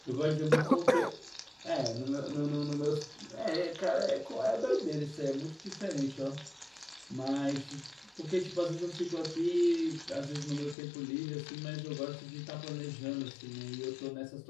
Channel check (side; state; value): right; drops out; at 10.8 s